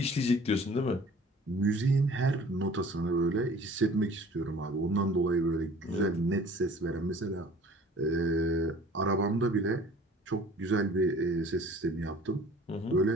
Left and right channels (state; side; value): normal; both; correlation 0.49